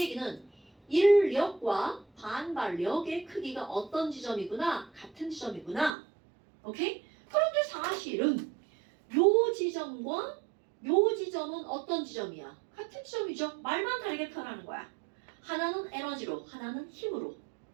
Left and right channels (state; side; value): drops out; left; at 6.0 s